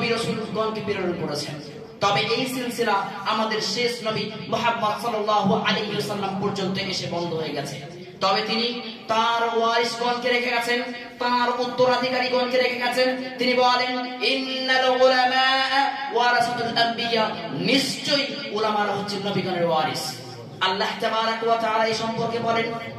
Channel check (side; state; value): both; identical; correlation 1.00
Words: রাসূলগণকে প্রেরণ করেছেন। তবে এই সিলসিলা আমাদের শেষ নবী মুহাম্মদ সাল্লাল্লাহু আলাইহি ওয়াসাল্লাম পর্যন্ত এসে বন্ধ হয়ে গেছে। তবে তিনি তার ওয়ারিসগণকে রেখে গেছেন, তার উত্তরাধিকারীগণকে রেখে গেছেন। তিনি বলেন, ইন্নাল উলামা ওয়ারাসাতুল আম্বিয়া, নিশ্চয়ই উলামারা হচ্ছে নবীগণের ওয়ারিস। আল্লাহ তাবারক ওয়া তাআলা এই সম্পর্কে বলেন,